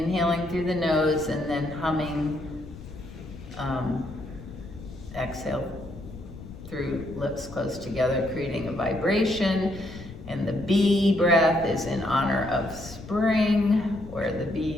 through the nose and then humming, exhale through lips close together, creating a vibration. And the bee breath is in honor of spring, where the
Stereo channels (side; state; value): left; noise; rumble, 15 dB below the sound